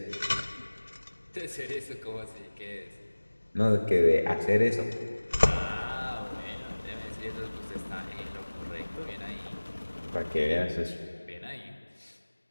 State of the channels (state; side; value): inverted; both; correlation -1.00